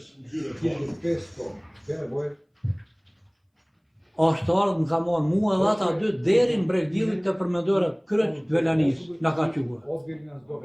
gjyre, 1500 bele boje. është ardhur më ka marrë mua dhe ata dy deri në Bregdillit të përmendore kryq Velanis na ka quar. Odveli nas do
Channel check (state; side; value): identical; both; correlation 1.00